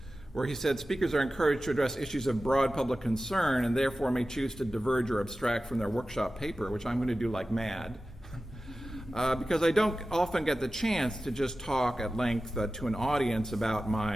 where he said speakers are encouraged to address issues of broad public concern and therefore may choose to diverge or abstract from their workshop paper, which I'm going to do like mad, because I don't often get the chance to just talk at length to an audience about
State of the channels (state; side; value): normal; both; correlation 0.95